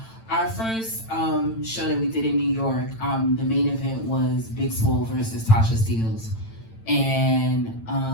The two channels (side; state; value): right; late; 8.9 ms